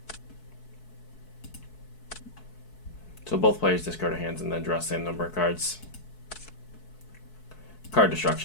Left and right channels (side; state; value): right; late; 4.6 ms